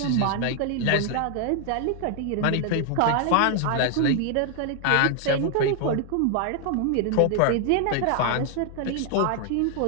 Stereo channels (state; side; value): different; both; correlation 0.00